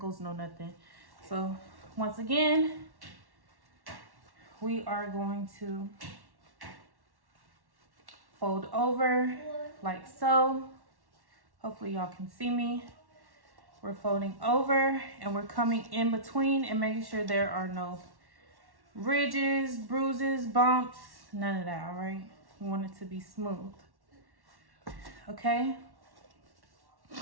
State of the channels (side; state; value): left; late; 1.1 ms